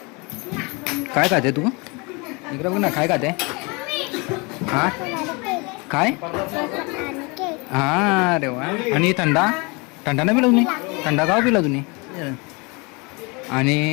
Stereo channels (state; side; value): quieter; right; 28.6 dB